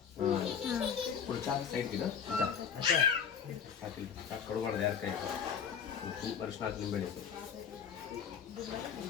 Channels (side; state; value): right; quieter; 7.4 dB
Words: ಕಡುಬಾರ್ದು ಯಾರ ಕೈ ವರ್ಷ ನಾಲ್ಕು ನಿಂಬೆ